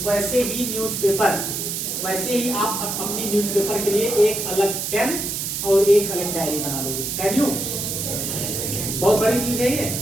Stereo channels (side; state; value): right; noise; hiss, 3 dB below the sound